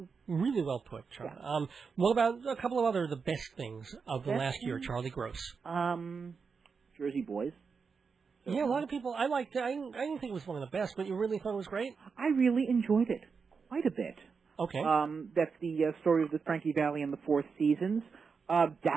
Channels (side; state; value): left; quieter; 5.4 dB